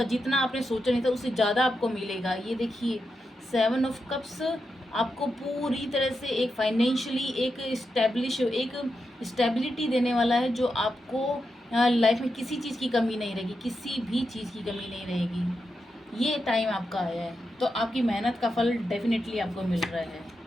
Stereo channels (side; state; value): both; normal; correlation 0.87